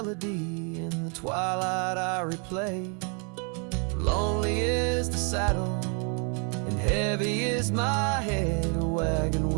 in the twilight I replay. Lonely is the saddle and heavy is my head. A wagon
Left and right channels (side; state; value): left; quieter; 37.4 dB